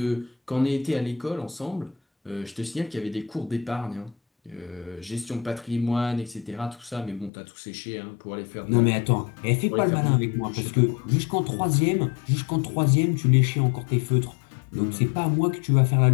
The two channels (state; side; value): drops out; right; at 7.3 s